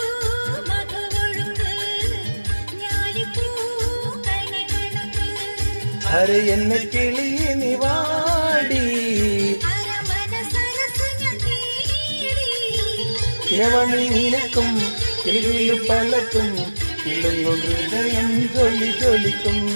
അര എന്നെ കിളിയെ നീ വാടി ഇരവണി നിനക്കും കിളിയിൽ പലക്കും ഇളങ്ങു ഹൃദയം ജ്വലി ജ്വലിക്കും.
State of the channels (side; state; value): both; inverted; correlation -1.00